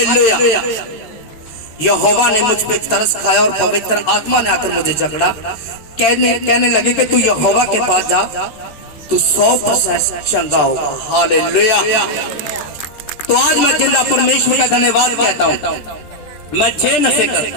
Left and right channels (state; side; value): late; right; 13 ms